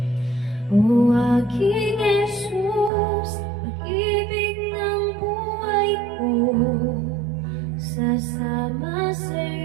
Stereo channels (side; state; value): left; drops out; at 2.9 s